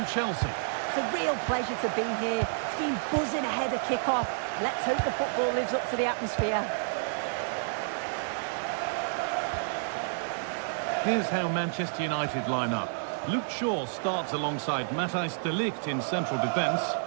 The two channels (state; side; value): silent; left; digital silence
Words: Chelsea. It's a real pleasure to be here. It's been buzzing ahead of kick-off. Let's hope the football lives up to the atmosphere. Here's how Manchester United line up. Luke Shaw starts alongside Matthijs de Ligt in central defence.